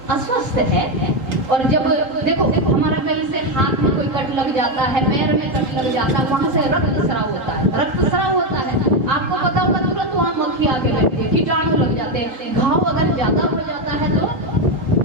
अस्वस्थ है। और जब देखो हमारा कहीं से हाथ में कोई कट लग जाता है, पैर में कट लग जाता है, वहां से रक्त स्राव होता है, रक्त स्राव होता है। आपको पता होगा तुरंत वहां मक्खी आके बैठती है, कीटाणु लग जाते हैं। घाव अगर ज्यादा हो जाता है तो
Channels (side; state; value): left; late; 3.9 ms